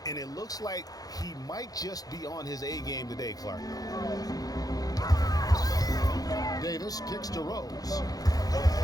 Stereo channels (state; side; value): late; right; 0.18 ms